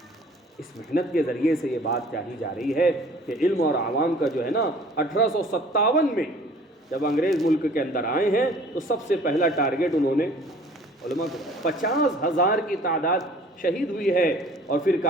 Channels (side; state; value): both; normal; correlation 0.50